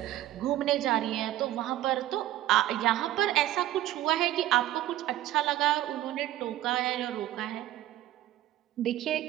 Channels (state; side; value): quieter; left; 14.1 dB